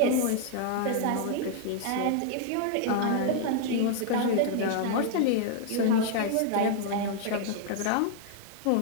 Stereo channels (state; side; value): different; both; correlation 0.00